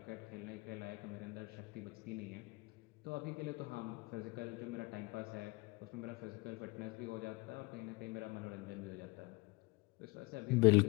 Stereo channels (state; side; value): quieter; right; 25.1 dB